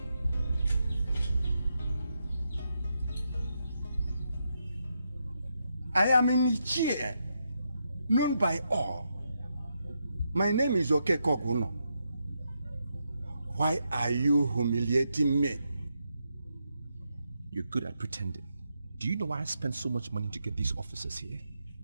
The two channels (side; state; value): both; inverted; correlation -0.82